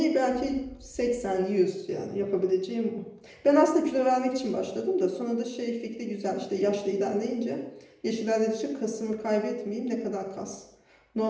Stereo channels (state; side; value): identical; both; correlation 1.00